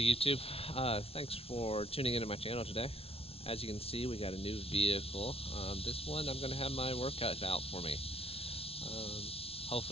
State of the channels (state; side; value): late; right; 0.28 ms